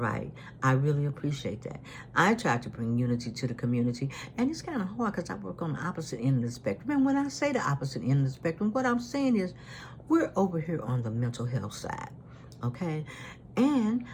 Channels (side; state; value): both; identical; correlation 1.00